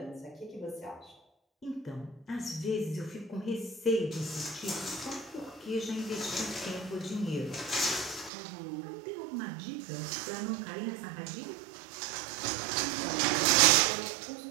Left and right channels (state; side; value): drops out; left; at 8.3 s